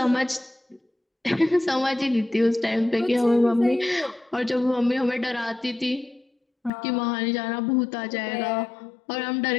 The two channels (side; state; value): right; drops out; at 6.7 s